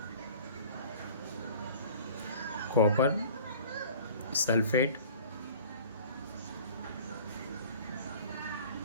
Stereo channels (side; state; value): both; inverted; correlation -0.45